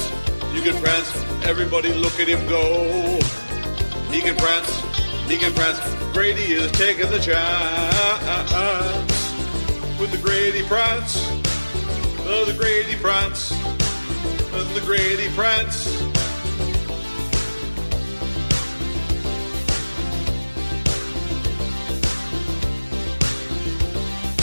everybody look at him go. He can prance, Grady is taking the chance. With the Grady prance, the Grady prance, the Grady prance.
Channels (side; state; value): both; inverted; correlation -1.00